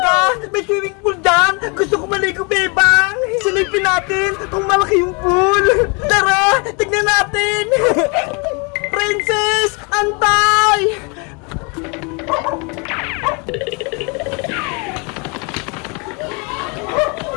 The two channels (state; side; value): quieter; right; 32.0 dB